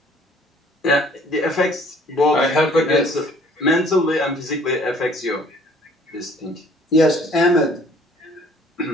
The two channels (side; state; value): both; normal; correlation 0.56